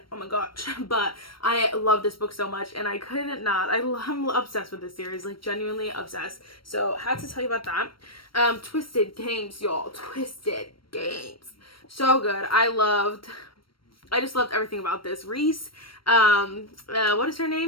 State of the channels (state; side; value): late; right; 0.74 ms